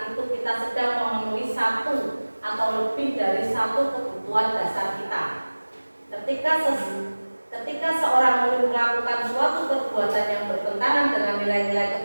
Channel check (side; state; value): both; inverted; correlation -1.00